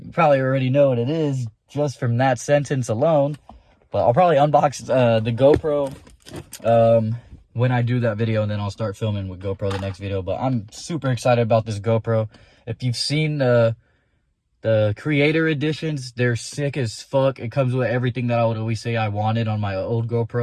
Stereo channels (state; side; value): identical; both; correlation 1.00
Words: you probably already know what it is just from that sentence alone. But I'll probably unbox the GoPro when I do that video, and then I'll start filming with GoPro the next video. But I'm super excited about this GoPro. If you've seen the Creator Editions, they're sick as fuck. It comes with everything that I would always say I wanted on my old